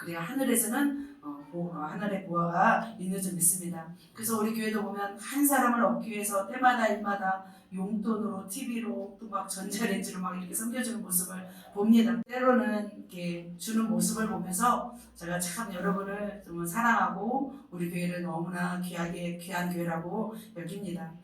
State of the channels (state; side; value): identical; both; correlation 1.00